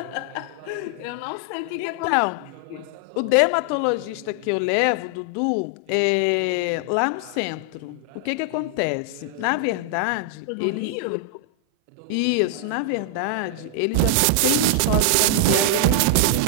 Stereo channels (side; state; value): both; different; correlation 0.00